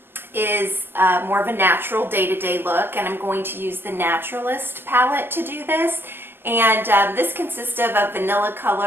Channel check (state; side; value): late; left; 0.10 ms